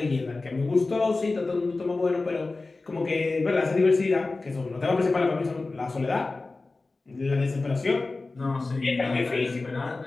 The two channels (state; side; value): quieter; right; 3.5 dB